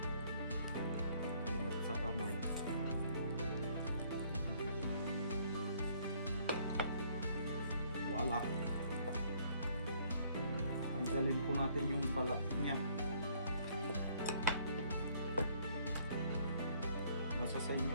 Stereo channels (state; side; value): inverted; both; correlation -0.63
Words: Ingat sa kamay. Wala. Tanggalin po natin yung balat niya. Nasa sa